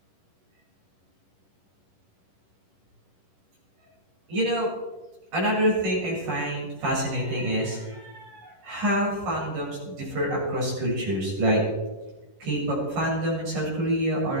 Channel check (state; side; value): late; left; 10 ms